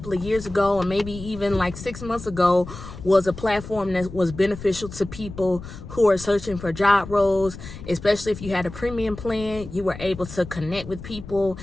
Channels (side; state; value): left; noise; rumble, 13 dB below the sound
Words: of years ago, or maybe even like 6 months ago, was a platform that was beneficial to people who are searching for job roles, especially if you had a premium plan. You were able to connect with people